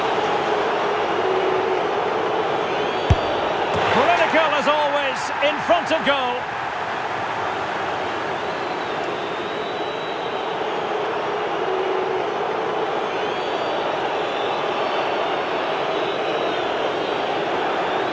Critical as always, in front of goal.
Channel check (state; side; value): identical; both; correlation 1.00